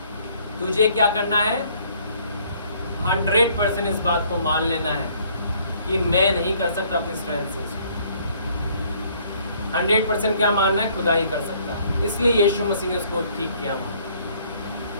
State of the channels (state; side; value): inverted; both; correlation -0.62